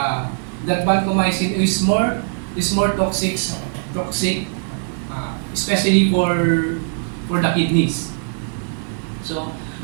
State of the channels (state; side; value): silent; left; 65 dB below the other